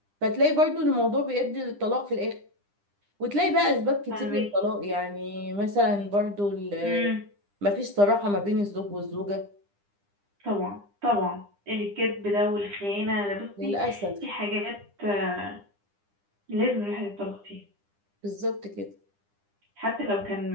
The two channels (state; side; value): late; left; 9.9 ms